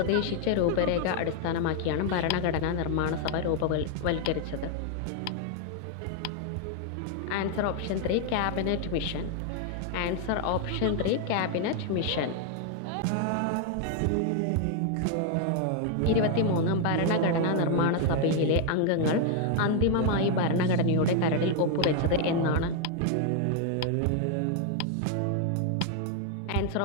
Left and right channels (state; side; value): different; both; correlation 0.00